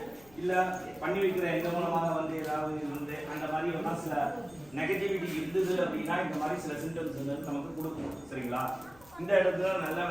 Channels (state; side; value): noise; left; rumble, 25 dB below the sound